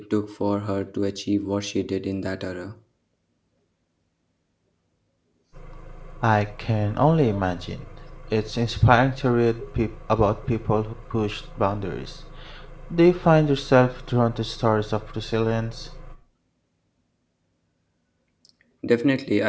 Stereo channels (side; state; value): both; identical; correlation 1.00